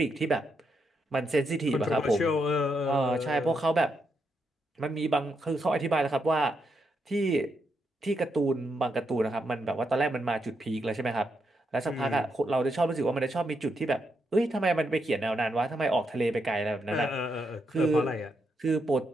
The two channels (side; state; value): both; normal; correlation 0.81